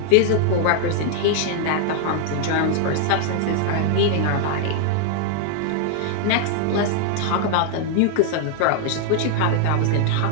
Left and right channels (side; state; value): both; different; correlation 0.00